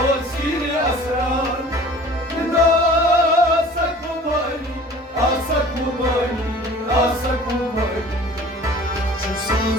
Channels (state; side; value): normal; both; correlation 0.46